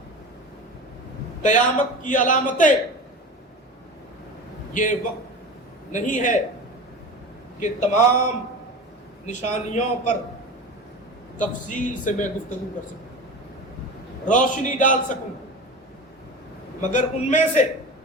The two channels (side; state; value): both; normal; correlation 0.30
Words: قیامت کی علامتیں۔ یہ وقت نہیں ہے کہ تمام نشانیوں پر تفصیل سے میں گفتگو کر سکوں، روشنی ڈال سکوں، مگر ان میں سے